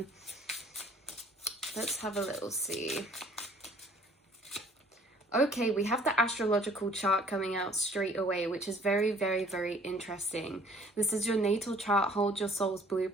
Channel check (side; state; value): both; normal; correlation 0.56